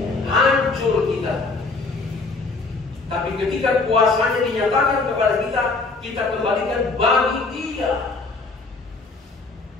hancur kita. Tapi ketika kuasanya dinyatakan kepada kita, kita kembalikan bagi Dia,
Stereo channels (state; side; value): quieter; right; 3.7 dB